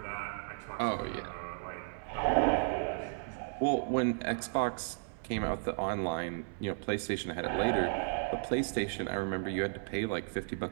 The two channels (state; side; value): silent; left; 55 dB below the other